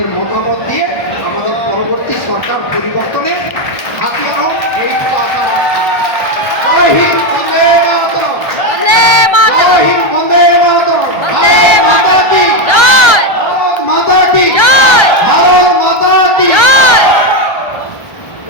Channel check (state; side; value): late; right; 1.3 ms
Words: মতামত দিয়ে আমাদের পরবর্তী সরকার পরিবর্তনে হাতিয়ার হোক। এই জয় হিন্দ, বন্দে মাতরম। বন্দে মাতরম। জয় হিন্দ, বন্দে মাতরম। বন্দে ভারত মাতা মাতরম। কি জয় ভারত মাতা কি জয় ভারত মাতা কি জয়।